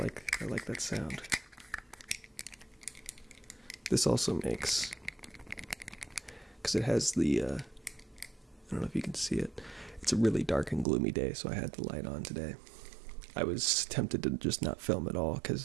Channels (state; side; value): drops out; left; at 10.9 s